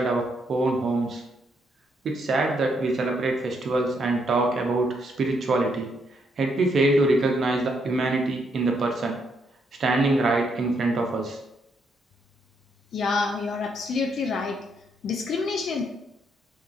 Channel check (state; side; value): normal; both; correlation 0.75